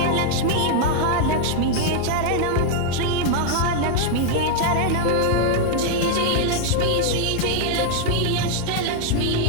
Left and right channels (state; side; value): different; both; correlation 0.00